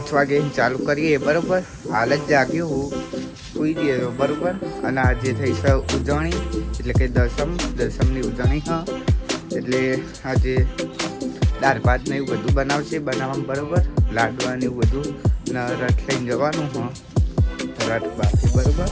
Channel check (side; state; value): both; identical; correlation 1.00